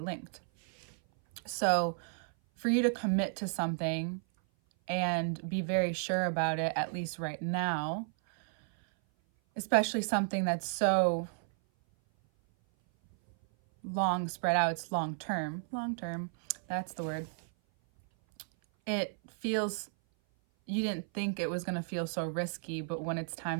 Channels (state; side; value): silent; left; 56 dB below the other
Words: So for you to commit to something and be very sure about it, at least right now, especially something that's so long spread out, it's long term, that's the word. It feels, you didn't think it was going to feel so risky, but when it's